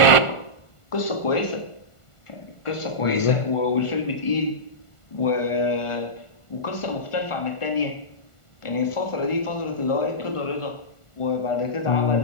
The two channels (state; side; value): late; right; 1.5 ms